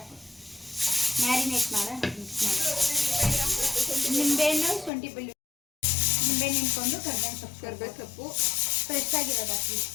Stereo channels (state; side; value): drops out; right; at 4.9 s